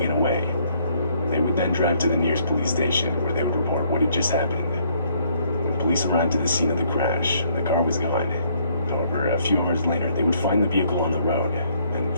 away. They would then drive to the nearest police station, where they would report what had just happened. When police arrived at the scene of the crash, the car was gone. However, a few hours later, they would find the vehicle on the road, and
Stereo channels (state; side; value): inverted; both; correlation -0.66